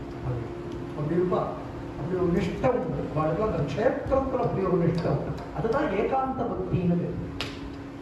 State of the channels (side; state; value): both; identical; correlation 1.00